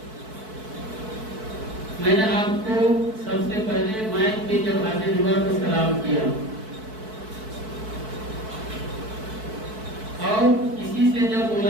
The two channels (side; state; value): left; late; 4.6 ms